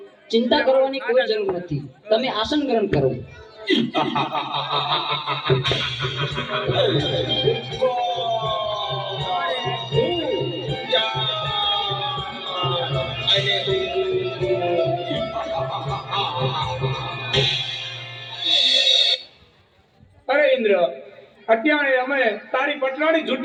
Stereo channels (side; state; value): both; identical; correlation 1.00